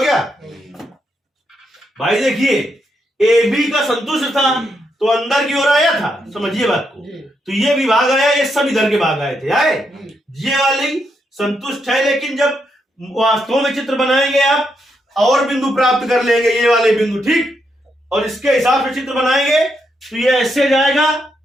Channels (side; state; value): both; normal; correlation 0.80